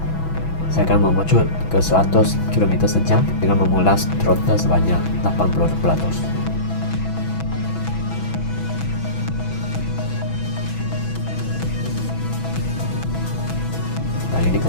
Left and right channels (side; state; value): right; late; 6.1 ms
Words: saya akan memucut ke 100 km sejam dengan memulas throttle sebanyak 80%. Dan ini